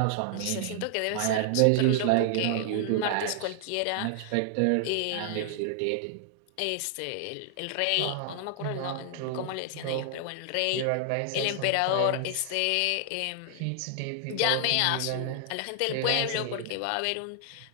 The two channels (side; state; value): both; different; correlation 0.00